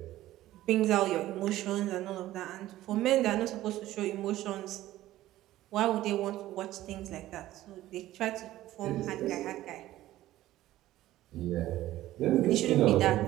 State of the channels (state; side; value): quieter; left; 15.0 dB